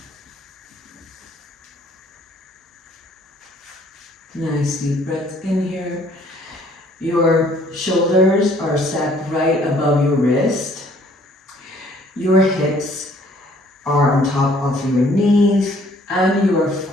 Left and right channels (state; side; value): normal; both; correlation 0.60